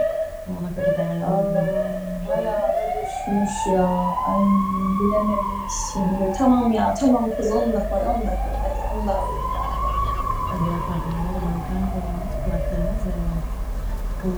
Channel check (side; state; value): both; identical; correlation 1.00